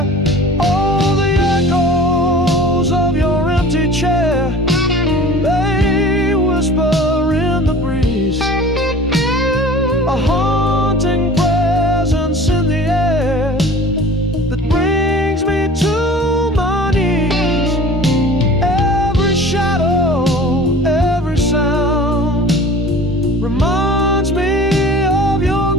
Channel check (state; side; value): normal; both; correlation 0.42